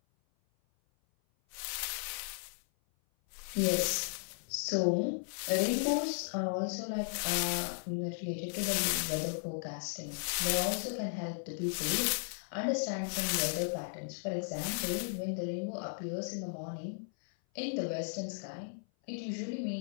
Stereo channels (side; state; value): right; silent; 54 dB below the other